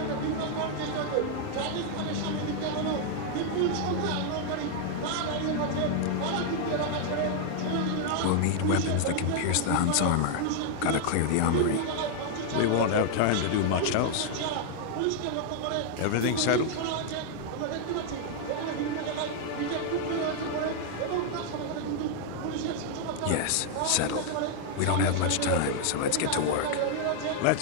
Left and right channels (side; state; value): both; different; correlation 0.00